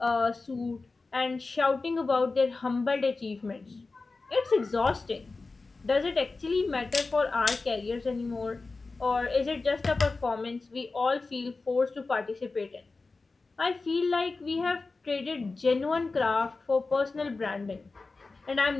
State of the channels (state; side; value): quieter; right; 3.8 dB